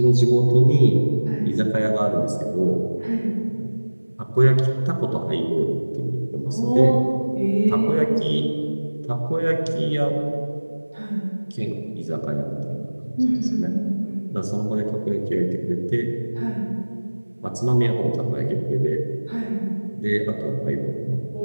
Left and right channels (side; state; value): both; inverted; correlation -1.00